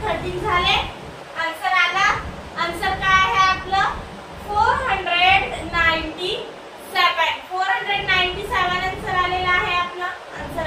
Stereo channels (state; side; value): identical; both; correlation 1.00